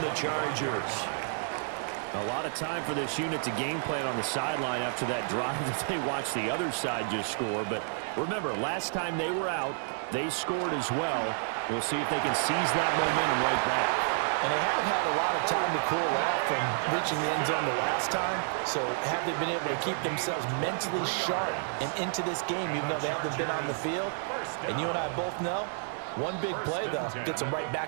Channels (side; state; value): left; silent; 58 dB below the other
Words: Chargers. A lot of time for this unit to game plan on the sideline after that drive that they watched the other side just score. But remember, last time they were out, they scored as well. We'll see if they can seize that momentum right back. And they have had a lot of time to cool off from reaching the end zone the last time. So have they been able to keep themselves mentally sharp and into this game, even though they haven't been on the field? And you and I both know, one big play, though, gets them right